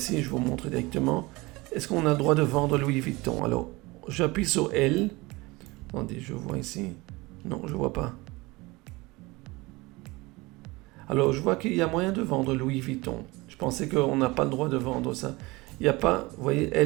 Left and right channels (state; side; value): quieter; left; 22.8 dB